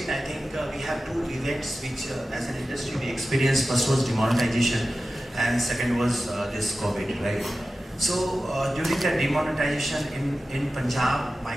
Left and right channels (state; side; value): normal; both; correlation 0.94